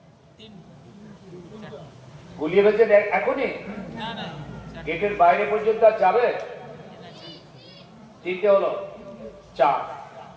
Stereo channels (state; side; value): identical; both; correlation 1.00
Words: গুলিয়ে ফেলছেন এখনই? গেটের বাইরে পর্যন্ত আর যাবে? তিনটে হলো, চার।